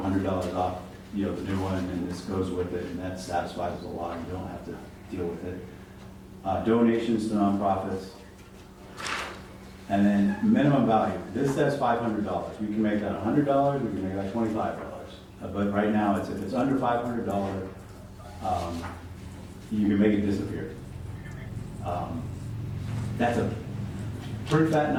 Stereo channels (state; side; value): identical; both; correlation 1.00